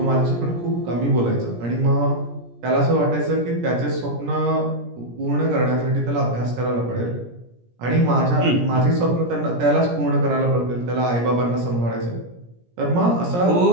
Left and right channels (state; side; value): late; left; 17 ms